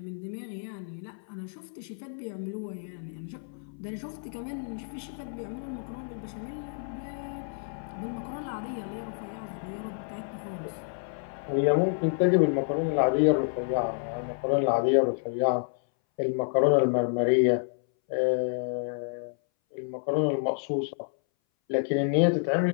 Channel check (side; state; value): right; silent; 58 dB below the other